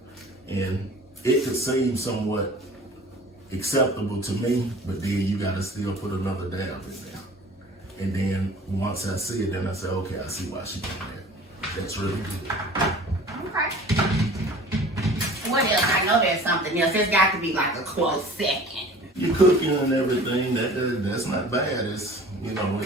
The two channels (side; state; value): both; normal; correlation 0.45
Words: And it could seem somewhat acceptable to me, but then you gotta still put another dab in there. And then once I see it, then I say, okay, I see why she did that. That's really good. Okay. What else? I know there's something else. There's got to be like a close second. You're cooking and everything. That's not bad. It's, you know,